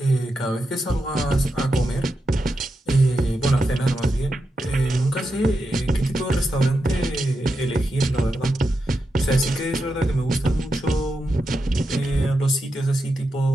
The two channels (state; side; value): normal; both; correlation 0.87